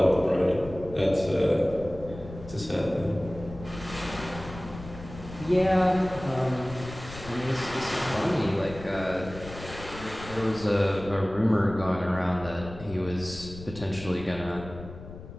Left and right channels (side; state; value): left; noise; rumble, 14 dB below the sound